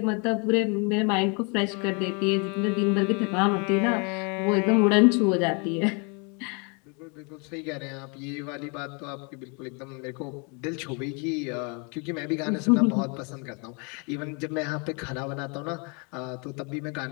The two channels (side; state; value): right; quieter; 34.1 dB